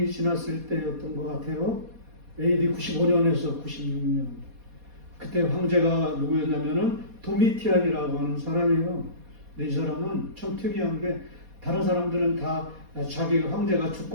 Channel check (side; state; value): left; late; 4.2 ms